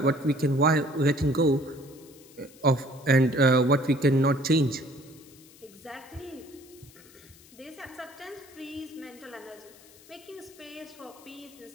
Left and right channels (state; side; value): noise; left; hiss, 24 dB below the sound